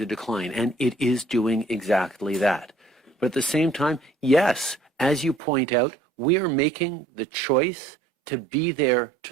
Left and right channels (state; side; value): drops out; left; at 5.4 s